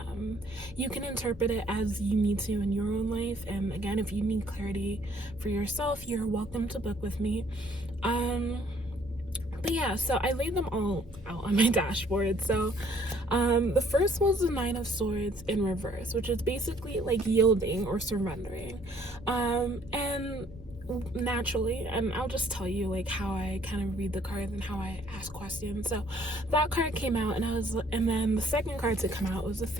you can interpret it as you need to in your own life. And again, if you need clarity for yourself, you're welcome to book with me. But yeah, so I laid them all out on my dashboard. So the first was the Nine of Swords in reverse, which is basically like yielding or surrendering. And naturally, and I'll just tell you like how I kind of read the cards and how I ask questions. So that card came out, and then the second card to come out was the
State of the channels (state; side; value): normal; both; correlation 0.62